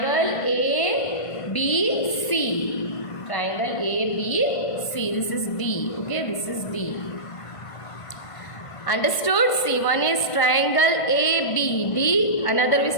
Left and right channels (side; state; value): right; late; 1.5 ms